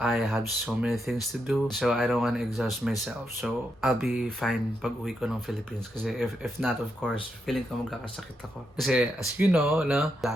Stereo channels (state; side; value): normal; both; correlation 0.82